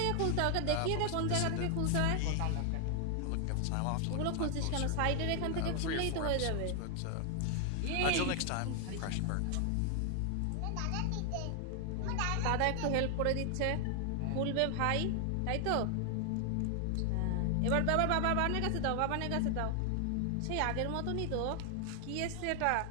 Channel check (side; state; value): both; different; correlation 0.00